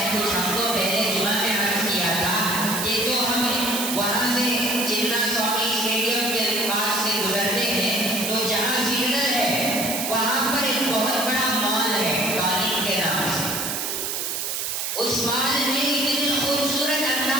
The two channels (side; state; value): right; noise; hiss, 2 dB below the sound